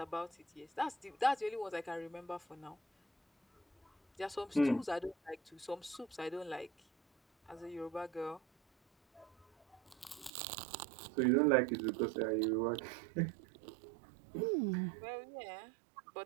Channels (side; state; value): left; drops out; at 10.3 s